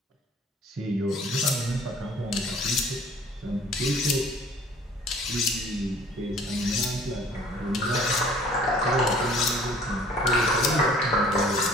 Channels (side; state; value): both; normal; correlation 0.53